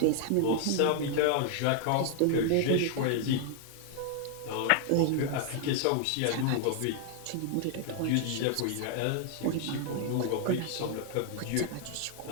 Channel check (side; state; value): both; different; correlation 0.00